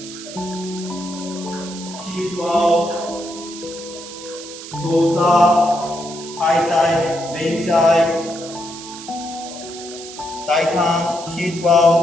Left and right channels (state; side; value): noise; right; hiss, 13 dB below the sound